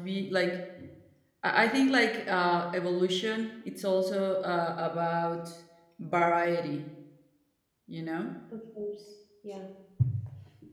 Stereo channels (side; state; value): both; identical; correlation 1.00